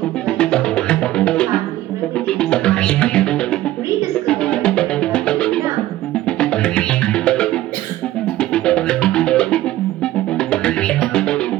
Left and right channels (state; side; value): quieter; left; 14.9 dB